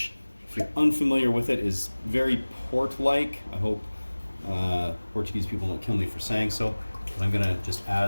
if you're unfamiliar with it, is very port-like. I hope Portuguese people don't kill me for saying so, but I'm gonna just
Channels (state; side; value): inverted; both; correlation -1.00